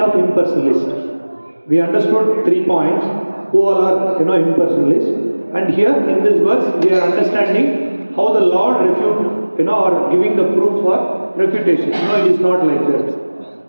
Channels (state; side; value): inverted; both; correlation -1.00